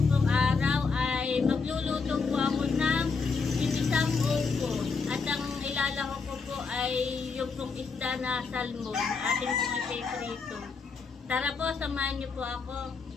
pong araw ay magluluto po ako ng ginisang upo. At ang ilalako ko po ay yung pong isda na salmon. Ating pong ipiprito. Tara po, samahan niyo po ako.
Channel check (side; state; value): right; quieter; 4.8 dB